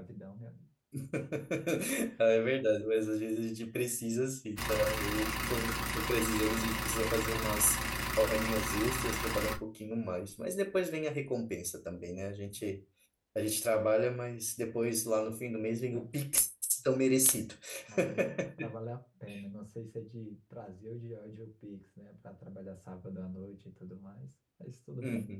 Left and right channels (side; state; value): both; identical; correlation 1.00